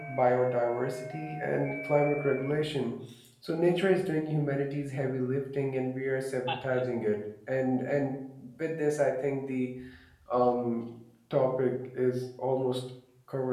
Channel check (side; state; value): both; identical; correlation 1.00